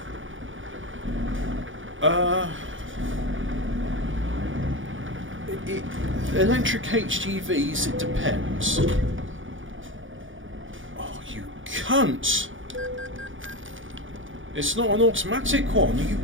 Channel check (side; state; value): left; late; 0.57 ms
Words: point. Electric HGVs, it depends. Cunt! It's not an automatic one, you